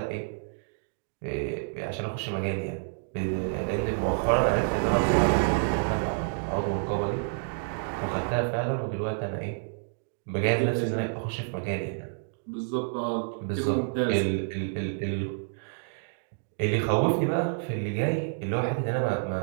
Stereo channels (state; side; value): silent; left; digital silence